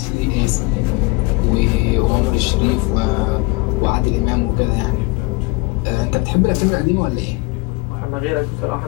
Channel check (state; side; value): quieter; right; 24.7 dB